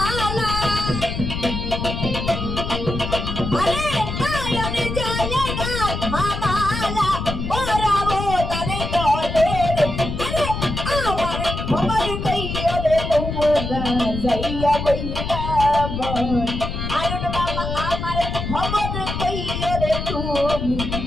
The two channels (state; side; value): noise; left; rumble, 5 dB below the sound